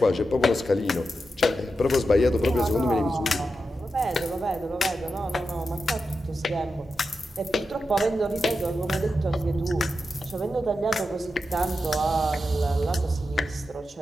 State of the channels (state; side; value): normal; both; correlation 0.89